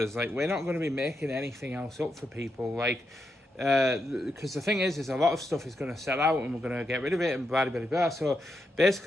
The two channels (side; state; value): both; normal; correlation 0.84